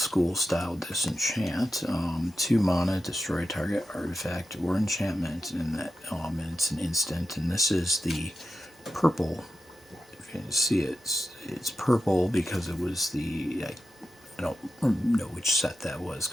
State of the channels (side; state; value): both; normal; correlation 0.90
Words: style disenchant, 2 mana, destroy a target artifact or enchantment, and it's an instant. And this is the purple. If you can see it, it's purple because it was the. I don't know which set that was